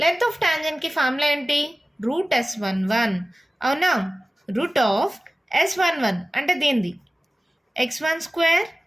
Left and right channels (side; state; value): both; normal; correlation 0.96